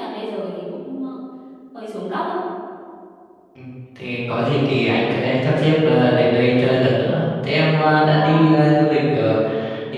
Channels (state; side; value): identical; both; correlation 1.00